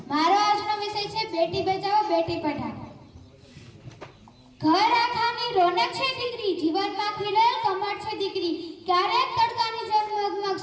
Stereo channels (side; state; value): both; identical; correlation 1.00